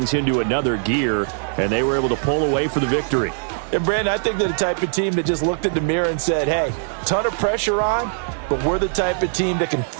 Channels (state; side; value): silent; left; 65 dB below the other